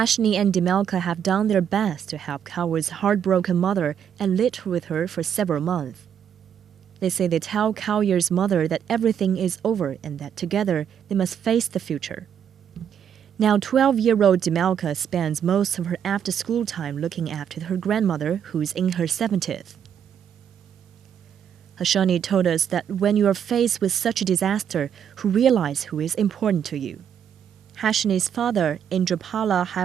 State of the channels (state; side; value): quieter; left; 8.6 dB